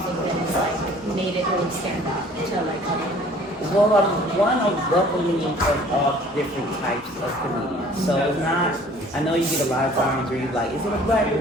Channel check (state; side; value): normal; both; correlation 0.52